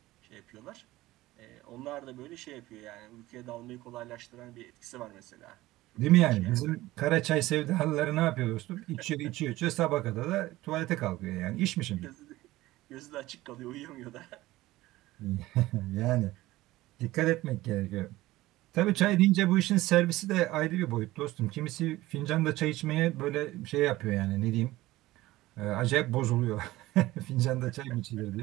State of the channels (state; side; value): quieter; left; 17.5 dB